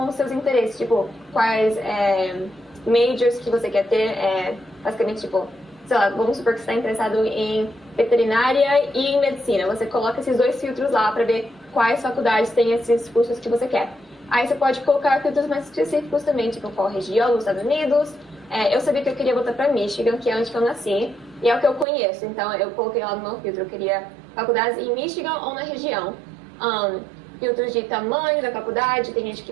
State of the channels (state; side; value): drops out; left; at 21.9 s